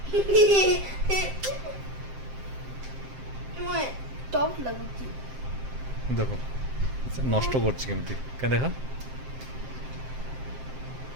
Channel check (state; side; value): late; left; 7.6 ms